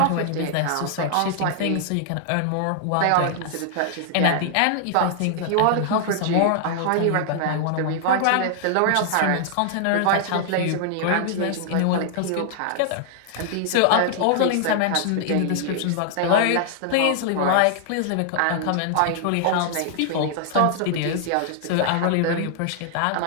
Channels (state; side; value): different; both; correlation -0.01